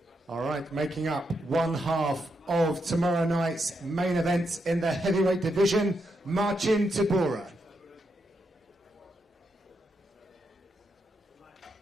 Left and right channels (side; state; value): both; normal; correlation 0.82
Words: All right, making up one half of tomorrow night's main event in the heavyweight division, Marcin Tybura.